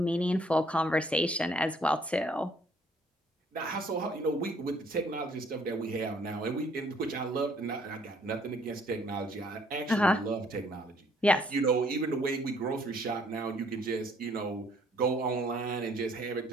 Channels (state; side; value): normal; both; correlation 0.63